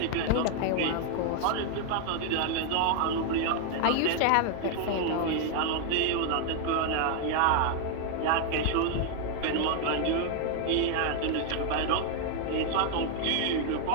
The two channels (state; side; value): different; both; correlation 0.00